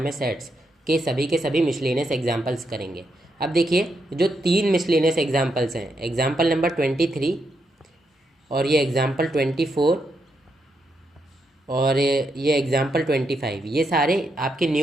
है सेट्स के सभी मिसलेनियस एग्जाम्पल्स करेंगे। अब देखिए, जो 3 मिसलेनियस एग्जाम्पल्स हैं, एग्जाम्पल नंबर 23 और ये एग्जाम्पल 24 और ये एग्जाम्पल 25, ये सारे आपके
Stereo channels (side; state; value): both; normal; correlation 0.81